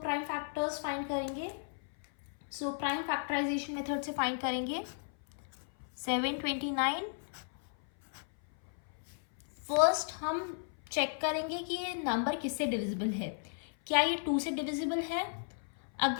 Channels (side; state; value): right; silent; 55 dB below the other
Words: factors find करेंगे. So prime factorisation method से find करेंगे 729. First हम check करेंगे कि ये नंबर किससे डिविजिबल है. क्या ये 2 से डिविजिबल है?